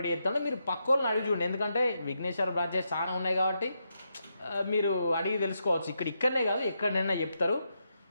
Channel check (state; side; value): inverted; both; correlation -0.83